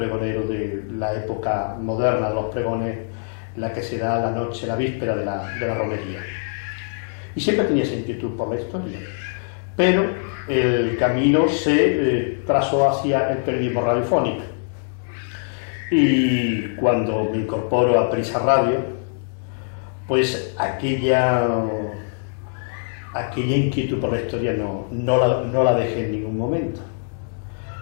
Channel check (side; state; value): right; silent; digital silence